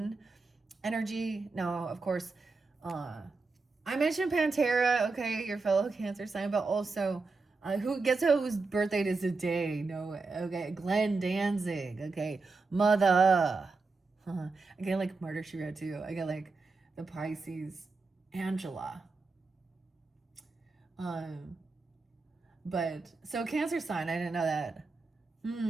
energy. No, of course. I mentioned Pantera, okay, your fellow Cancer sign, but also whose birthday is today? No, okay, Glenn Danzig, okay, mother. I get like Murder She Wrote too. I get like the Pisces, Angela. Um, but so Cancer sign, I didn't know that.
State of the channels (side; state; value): left; quieter; 3.9 dB